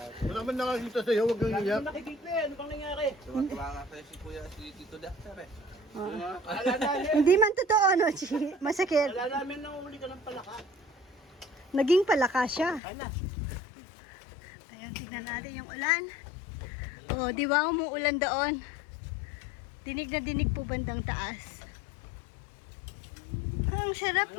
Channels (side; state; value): right; drops out; at 12.8 s